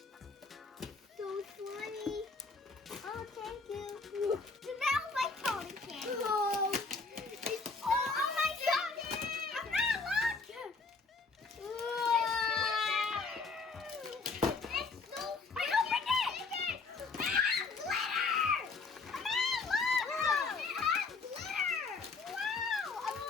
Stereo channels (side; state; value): right; quieter; 4.3 dB